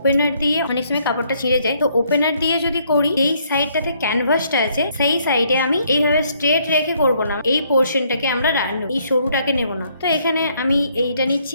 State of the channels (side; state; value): both; inverted; correlation -0.68